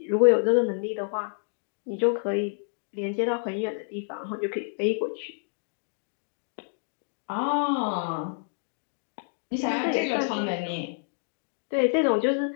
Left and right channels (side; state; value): right; silent; digital silence